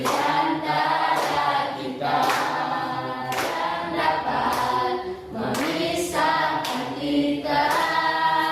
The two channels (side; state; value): both; identical; correlation 1.00